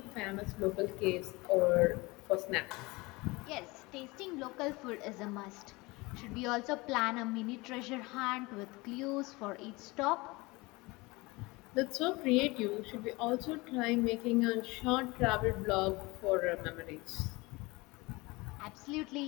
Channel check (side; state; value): right; quieter; 23.5 dB